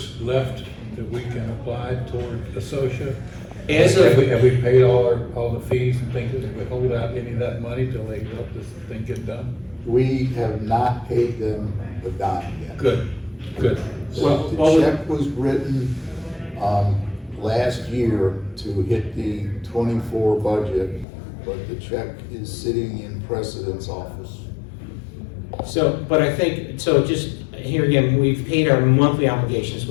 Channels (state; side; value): drops out; right; at 21.1 s